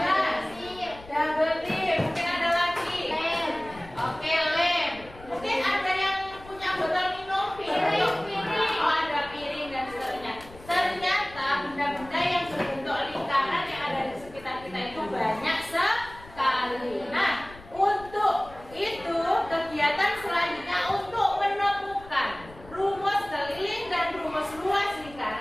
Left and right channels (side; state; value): left; noise; rumble, 19 dB below the sound